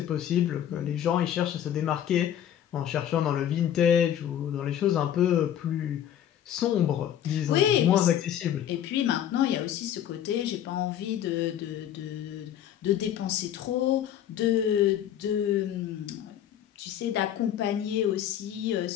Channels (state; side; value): quieter; right; 10.5 dB